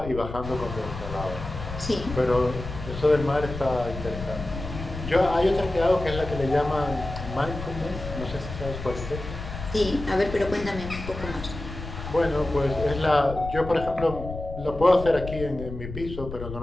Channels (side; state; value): left; noise; rumble, 9 dB below the sound